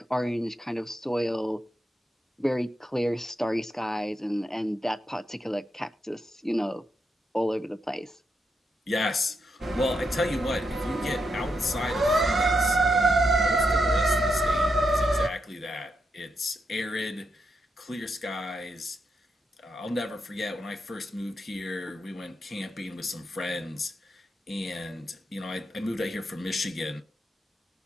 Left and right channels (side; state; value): both; normal; correlation 0.83